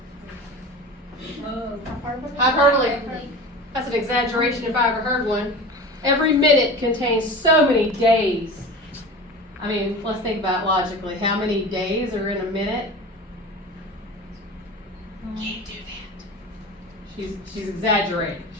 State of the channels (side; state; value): both; normal; correlation 0.33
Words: Hyperbole. That's an exaggeration if I ever heard one. Every minute contains so many days. I mean, let's think about it logically. How many days are in a minute? Can't do that. She's exaggerating.